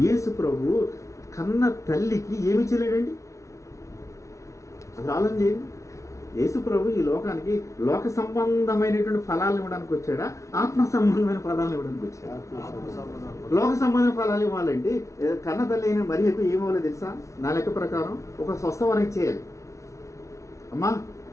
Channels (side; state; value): right; late; 0.14 ms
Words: యేసు ప్రభు కన్న తల్లికి ఏమి చేయలేడండి. అది ఆలోచన చేయండి. యేసు ప్రభు ఈ లోకానికి లోక సంబంధమైనటువంటి ఫలాలు ఇవ్వడానికి వచ్చాడా, ఆత్మ సంబంధమైన ఫలాలను ఇవ్వడానికి వచ్చాడా? లోక సంబంధమైన ఫలాలు ఇవ్వాలంటే కన్న తల్లి అయిన మరి ఎక్కువ ఏమవ్వాలి తెలుసా? నా లెక్క ప్రకారం ఒక స్వస్థవరం చేయాలి. అమ్మా